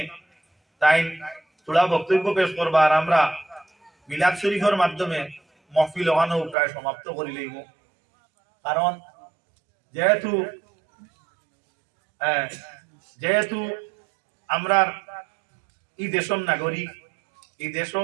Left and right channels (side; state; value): left; drops out; at 6.6 s